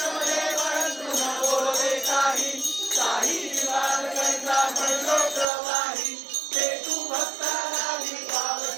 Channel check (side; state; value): left; drops out; at 5.5 s